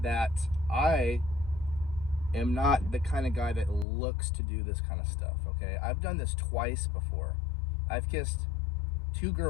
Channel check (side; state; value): right; drops out; at 3.9 s